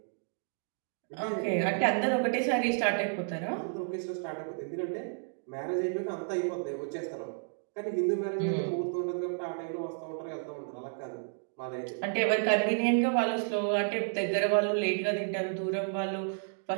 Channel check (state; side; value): silent; left; digital silence